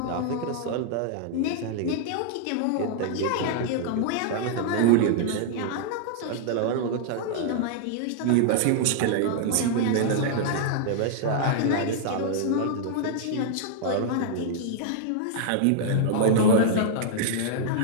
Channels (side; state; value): both; different; correlation -0.01